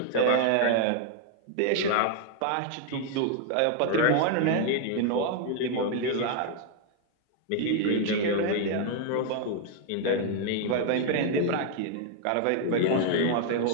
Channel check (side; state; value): both; different; correlation 0.00